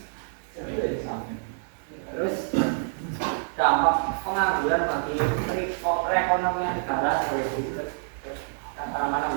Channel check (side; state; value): left; silent; digital silence